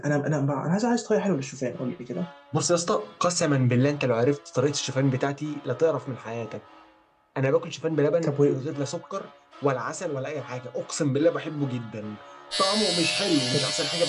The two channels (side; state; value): both; identical; correlation 1.00